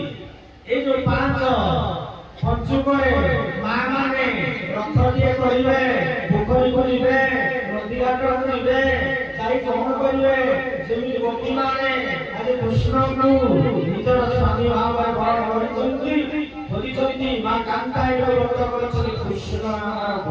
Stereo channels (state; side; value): identical; both; correlation 1.00